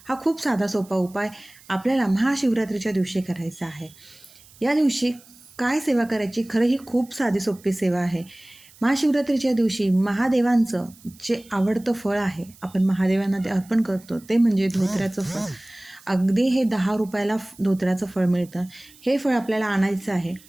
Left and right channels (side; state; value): right; noise; hiss, 25 dB below the sound